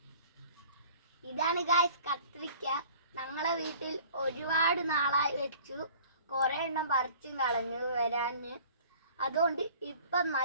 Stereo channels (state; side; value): inverted; both; correlation -0.49